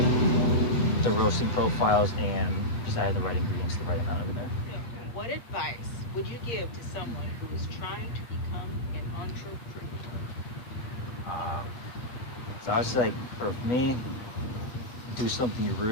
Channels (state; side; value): late; right; 8.1 ms